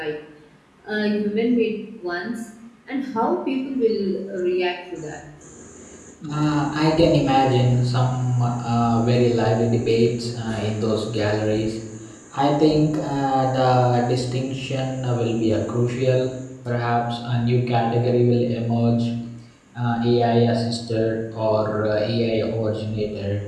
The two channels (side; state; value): both; identical; correlation 1.00